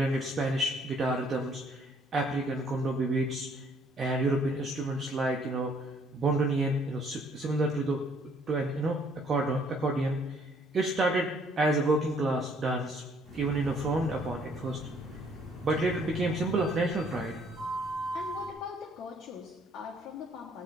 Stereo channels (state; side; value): normal; both; correlation 0.63